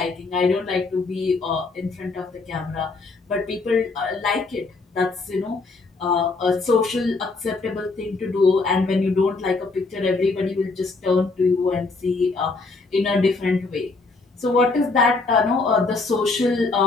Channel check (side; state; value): right; quieter; 3.8 dB